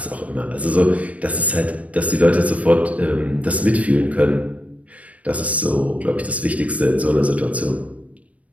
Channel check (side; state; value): left; late; 0.066 ms